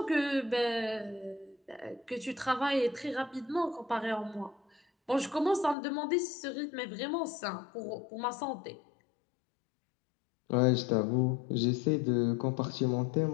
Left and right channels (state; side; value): drops out; right; at 5.8 s